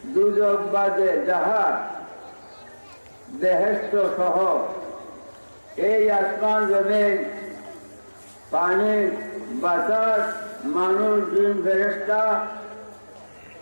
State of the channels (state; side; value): inverted; both; correlation -1.00